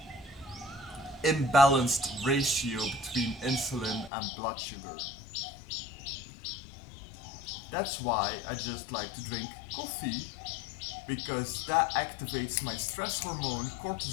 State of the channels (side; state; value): right; drops out; at 4.1 s